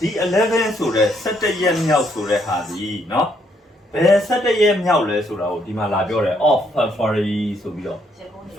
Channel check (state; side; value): normal; both; correlation 0.72